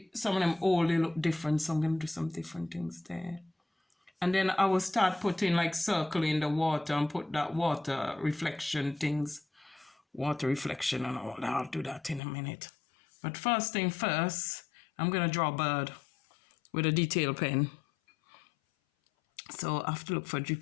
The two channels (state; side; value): drops out; right; at 12.2 s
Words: of them old, they look different. So I'm going to do some different things there. And then I will start putting like circle in the water and put that water reflection things. Water reflection and all that. I'll do that in a minute. But first thing first, I'm going to draw a bird with a detail pen. So I have to look for a